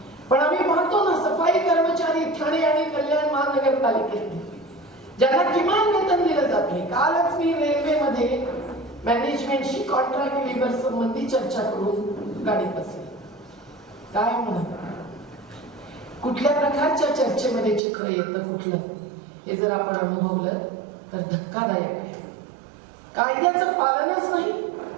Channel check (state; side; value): drops out; left; at 17.8 s